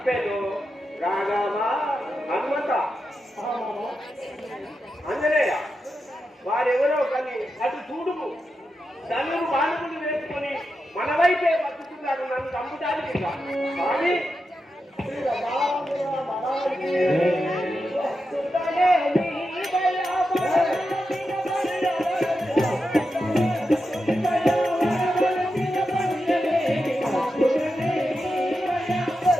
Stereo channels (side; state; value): both; normal; correlation 0.88